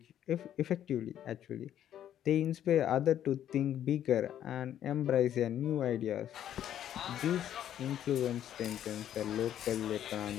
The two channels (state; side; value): quieter; right; 10.8 dB